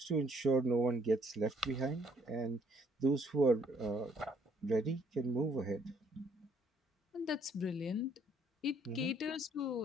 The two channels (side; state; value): both; normal; correlation 0.65